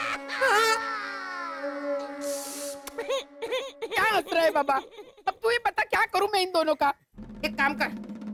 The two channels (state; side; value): identical; both; correlation 1.00